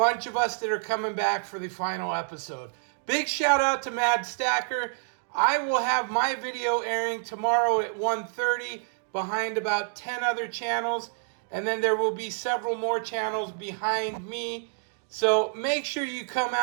of us that are coming back for the final episode. Big shout out to Mad Stacker. I will have my video airing tomorrow at 1:30 behind about 10 other channels. And then there will be several more channels behind me. So make sure you come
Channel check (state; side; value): silent; left; digital silence